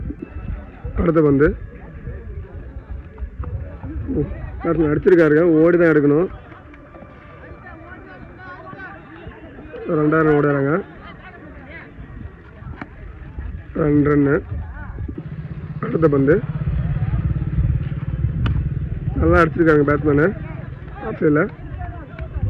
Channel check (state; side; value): identical; both; correlation 1.00